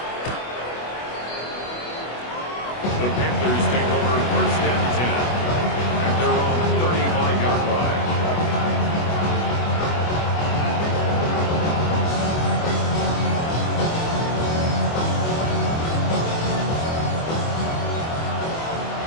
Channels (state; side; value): late; right; 25 ms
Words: The Panthers take over first and 10 at their own 35-yard line.